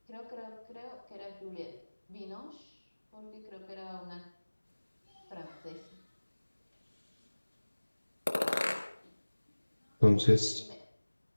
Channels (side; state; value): both; inverted; correlation -1.00